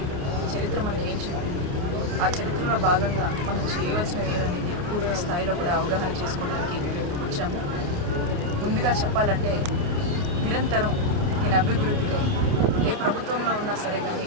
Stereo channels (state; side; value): late; left; 28 ms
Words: చరిత్ర మనకి ఏం చెప్పింది, ఆ చరిత్రలో భాగంగా మనం చేయవలసినవి ఏదనేది పూర్తి స్థాయిలో కూడా అవగాహన చేసుకోవడానికి వచ్చాము. ముందుగా చెప్పాలంటే నిరంతరం దీని అభివృద్ధికై ఏ ప్రభుత్వంలో ఉన్నా సరే కానీ